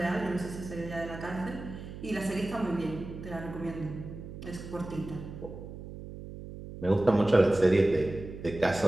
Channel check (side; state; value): right; noise; hum, 11 dB below the sound